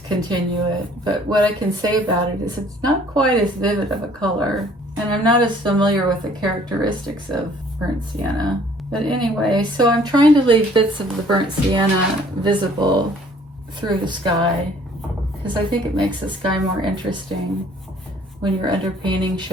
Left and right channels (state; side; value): normal; both; correlation 0.57